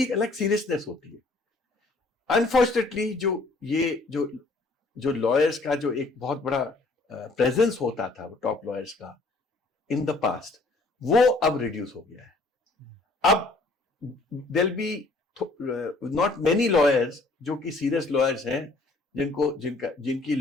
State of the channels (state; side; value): quieter; right; 3.2 dB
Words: एक अलग सीरियसनेस होती है। अनफॉर्चुनेटली जो लॉयर्स का जो एक बहुत बड़ा प्रेजेंस होता था, वो टॉप लॉयर्स का इन द पास्ट, वो अब रिड्यूस हो गया है। अब there be not many lawyers जो कि सीरियस लॉयर्स हैं, जिनकी